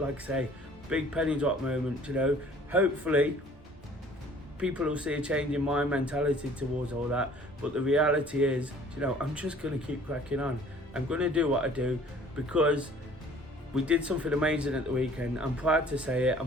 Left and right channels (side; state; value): both; normal; correlation 0.52